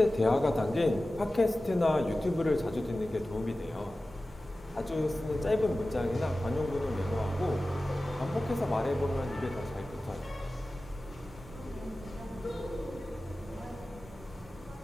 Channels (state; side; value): normal; both; correlation 0.96